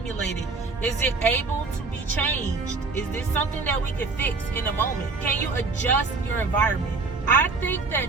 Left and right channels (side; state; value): left; quieter; 4.0 dB